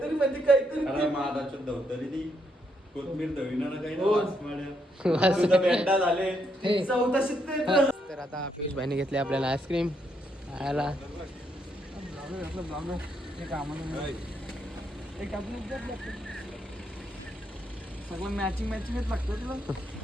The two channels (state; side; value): normal; both; correlation 0.76